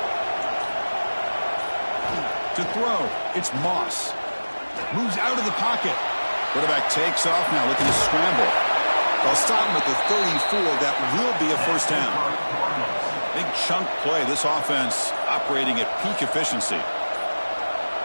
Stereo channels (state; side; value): inverted; both; correlation -1.00